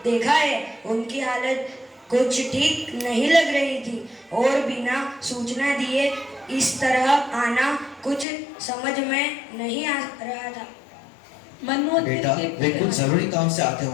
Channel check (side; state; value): right; drops out; at 8.2 s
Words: देखा है। उनकी हालत कुछ ठीक नहीं लग रही थी और बिना सूचना दिए इस तरह आना कुछ समझ में नहीं आ रहा था। मनोवती बेटा, वे कुछ जरूरी काम से आते